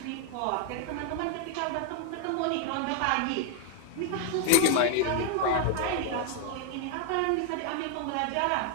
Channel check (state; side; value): different; both; correlation 0.00